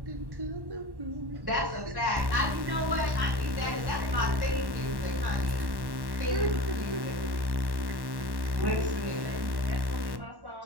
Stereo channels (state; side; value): late; left; 1.1 ms